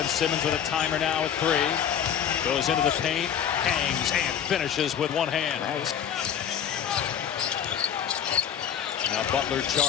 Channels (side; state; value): right; quieter; 8.8 dB